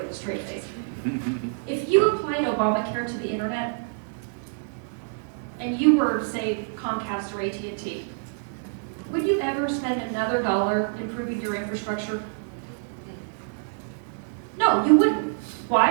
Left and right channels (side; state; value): left; silent; digital silence